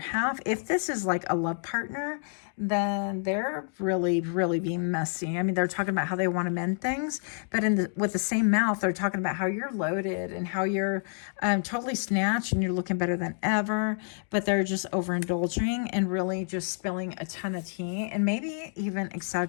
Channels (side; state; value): right; silent; 59 dB below the other